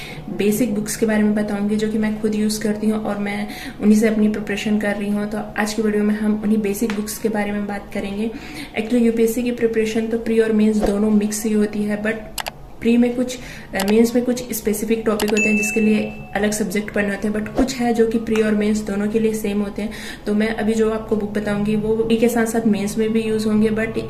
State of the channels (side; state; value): both; identical; correlation 1.00